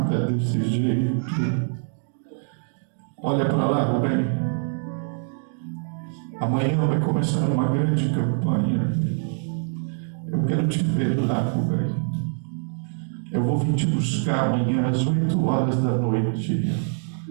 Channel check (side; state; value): left; silent; 59 dB below the other